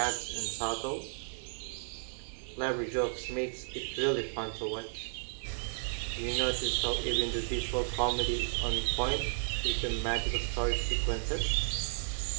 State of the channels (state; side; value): silent; left; digital silence